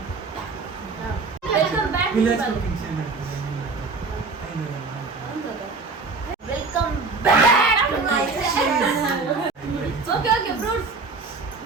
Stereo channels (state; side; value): quieter; left; 4.1 dB